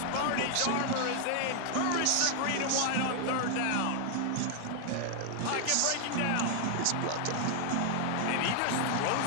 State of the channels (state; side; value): different; both; correlation 0.00